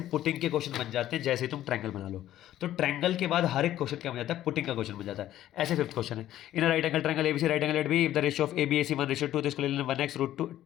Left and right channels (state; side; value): quieter; right; 12.9 dB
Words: पुटिंग के क्वेश्चन बन जाते हैं जैसे ही तुम ट्रायंगल बना लो। तो ट्रायंगल के बाद हर एक क्वेश्चन क्या बन जाता है, पुटिंग का क्वेश्चन बन जाता है। ऐसे फिफ्थ क्वेश्चन है, in right angle triangle ABC right angle at B, if the ratio of ABAC 1:2, तो इसको ले लेना 1x